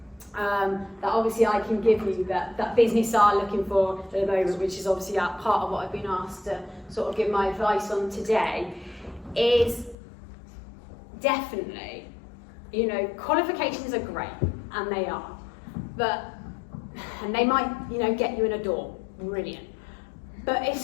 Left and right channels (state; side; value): drops out; right; at 10.0 s